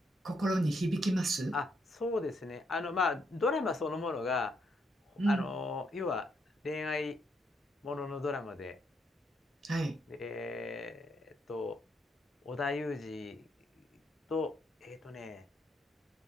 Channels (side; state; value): both; normal; correlation 0.76